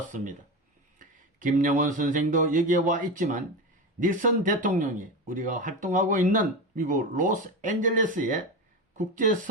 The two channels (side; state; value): both; normal; correlation 0.21